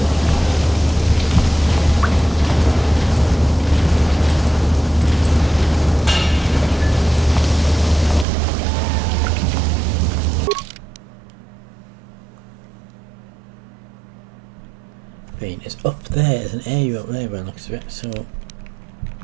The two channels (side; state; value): left; drops out; at 8.2 s